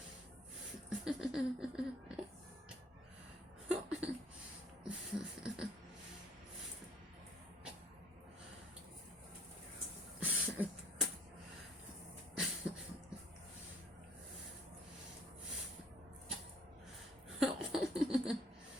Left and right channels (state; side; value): normal; both; correlation 0.58